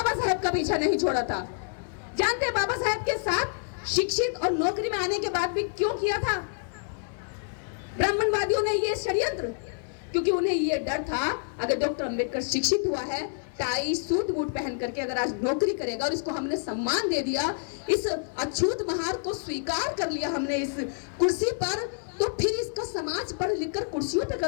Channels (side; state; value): right; silent; 59 dB below the other